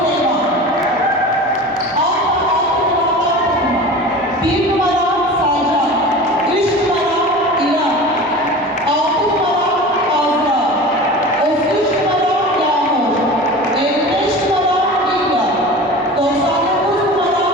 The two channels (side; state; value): both; normal; correlation 0.35